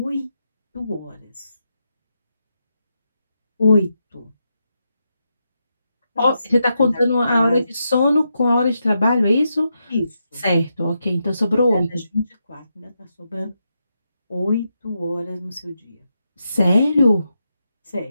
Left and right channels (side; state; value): both; inverted; correlation -0.84